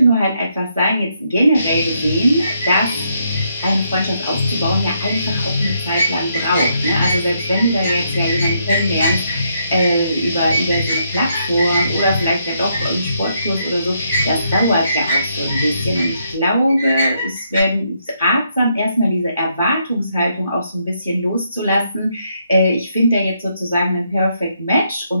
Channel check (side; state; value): both; inverted; correlation -0.76